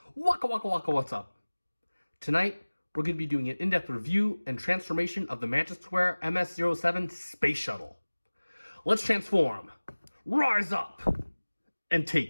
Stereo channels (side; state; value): both; inverted; correlation -1.00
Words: Waka waka waka, what's up? Tonight, we're going to be doing an in-depth review and transformation of the Magic Square MS-07 Space Shuttle. Let's transform, rise up, and